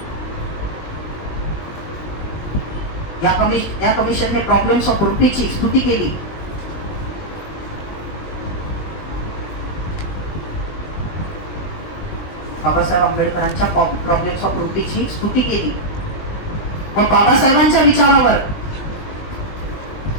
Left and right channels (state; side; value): late; right; 20 ms